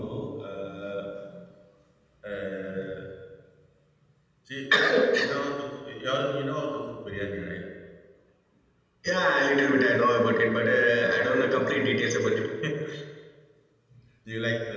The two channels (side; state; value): both; identical; correlation 1.00